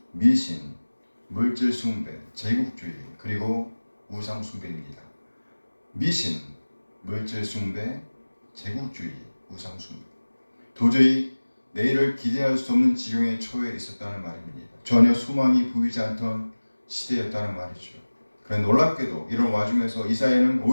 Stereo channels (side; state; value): both; inverted; correlation -1.00